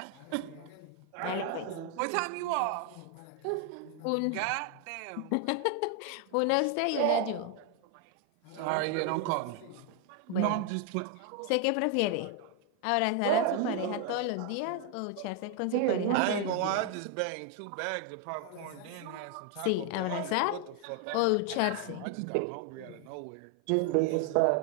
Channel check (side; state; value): both; different; correlation 0.00